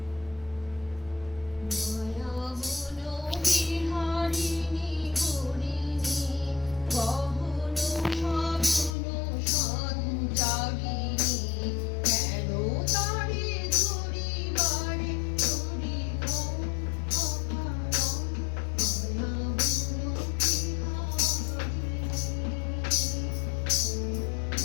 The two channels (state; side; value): drops out; right; at 9.0 s